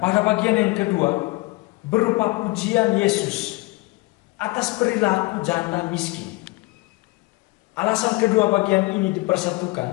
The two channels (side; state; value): right; quieter; 23.0 dB